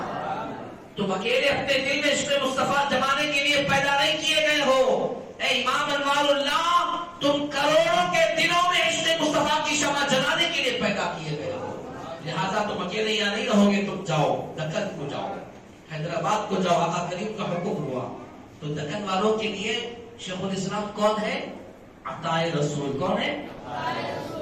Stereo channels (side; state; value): both; identical; correlation 1.00